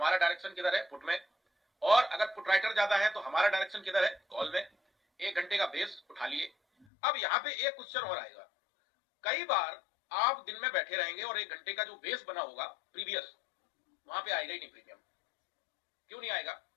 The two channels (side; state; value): right; drops out; at 6.9 s